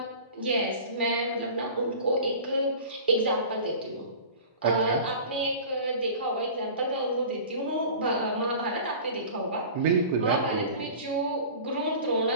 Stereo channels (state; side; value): inverted; both; correlation -0.39